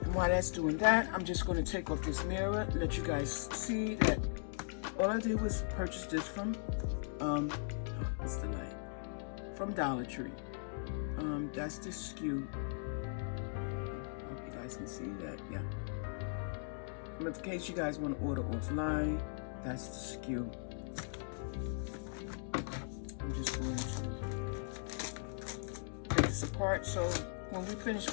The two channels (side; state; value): right; silent; digital silence